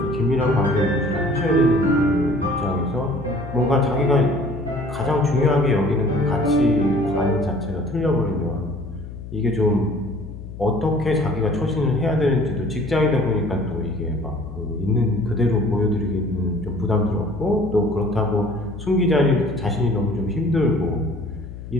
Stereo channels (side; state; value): left; noise; hum, 12 dB below the sound